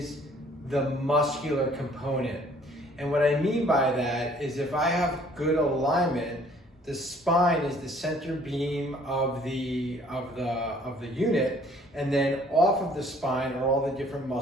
the muscular component. And what I mean by that is, if I have good alignment, the spine is the center beam of the unit, and then off of the spine are all the different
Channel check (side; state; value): both; normal; correlation 0.57